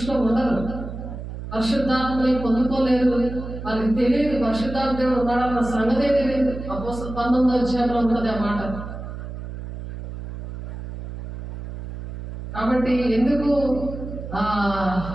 ఉండరు. పరిశుద్ధాత్మని పొందుకోలేరు, వాళ్ళకి తెలియదు పరిశుద్ధాత్మ దేవుడు ఉన్నాడన్న సంగతే తెలియదు. అపోస్తలుల 19వ అధ్యాయంలో ఉంటుంది ఆ మాట. కాబట్టి ఎందుకు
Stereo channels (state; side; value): noise; right; hum, 9 dB below the sound